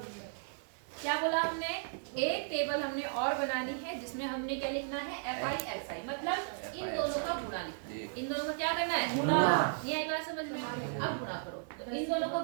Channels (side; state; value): left; silent; digital silence